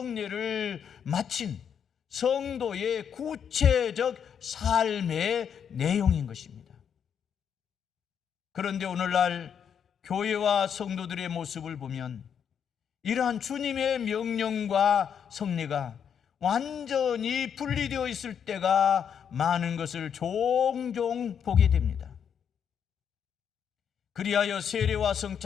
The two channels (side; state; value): right; quieter; 7.8 dB